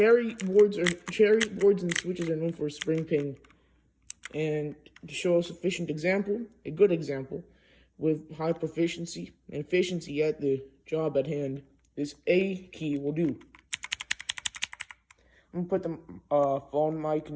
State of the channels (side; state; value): both; identical; correlation 1.00